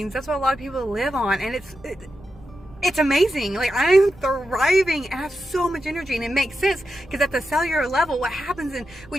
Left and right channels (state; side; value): noise; right; rumble, 24 dB below the sound